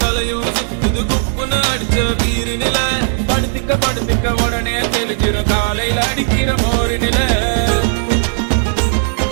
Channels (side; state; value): left; silent; digital silence